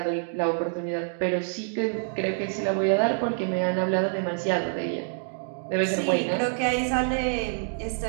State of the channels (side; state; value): left; silent; digital silence